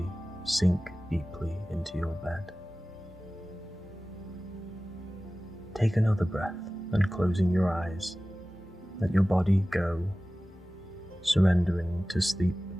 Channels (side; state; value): both; normal; correlation 0.97